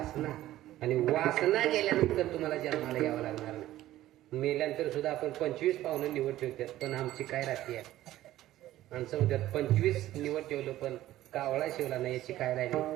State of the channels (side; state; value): left; quieter; 14.6 dB